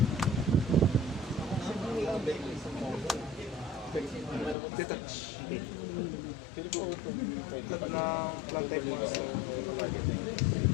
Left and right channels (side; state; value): right; drops out; at 4.5 s